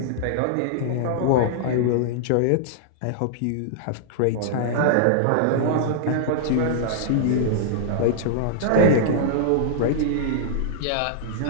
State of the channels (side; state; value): both; different; correlation -0.01